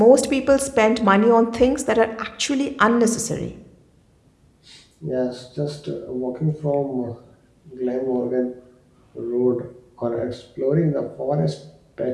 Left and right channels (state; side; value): identical; both; correlation 1.00